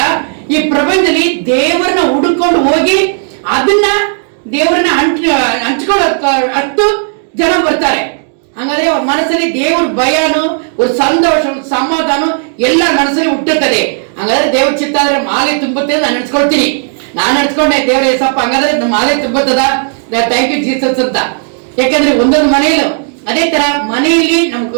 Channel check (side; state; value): left; silent; 66 dB below the other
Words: ಈ ಪ್ರಪಂಚದಲ್ಲಿ ದೇವರನ್ನ ಹುಡುಕೊಂಡು ಹೋಗಿ ಅದನ್ನ ದೇವರನ್ನ ಹಂಚ್ಕೊಳ್ಳೋ ಅಷ್ಟು ಜನ ಬರ್ತಾರೆ. ಹಂಗಾದ್ರೆ ಅವ್ರ ಮನಸ್ಸಲ್ಲಿ ದೇವ್ರ ಭಯನು, ಒಂದು ಸಂತೋಷ, ಒಂದು ಸಮಾಧಾನ ಎಲ್ಲ ಮನಸ್ಸಲ್ಲಿ ಹುಟ್ಟುತ್ತದೆ. ಹಂಗಾದ್ರೆ ದೇವ್ರ ಚಿತ್ತ ಆದ್ರೆ ಮಾಲೆ ತುಂಬುತ್ತೆ ನಾನು ನೆನ್ಸ್ಕೊಳ್ತೀನಿ. ನಾನು ನೆನ್ಸ್ಕೊಂಡೆ, ದೇವ್ರ ಏಸಪ್ಪ ಹಂಗಾದ್ರೆ ಮಾಲೆ ತುಂಬುತ್ತದ, ಥ್ಯಾಂಕ್ ಯು ಜೀಸಸ್ ಅಂತ. ಯಾಕಂದ್ರೆ ಒಂದೊಂದು ಮನೆಯಲ್ಲೂ ಅದೇ ತರ ಮನೆಯಲ್ಲಿ